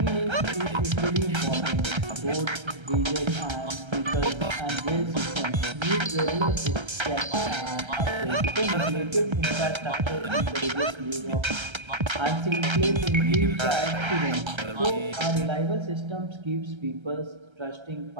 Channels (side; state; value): left; late; 1.3 ms